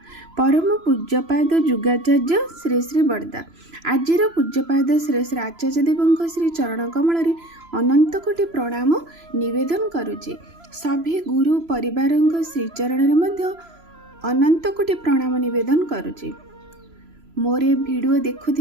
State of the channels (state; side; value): late; left; 3.0 ms